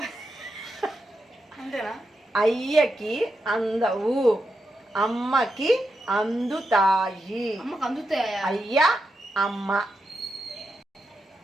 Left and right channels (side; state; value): both; normal; correlation 0.86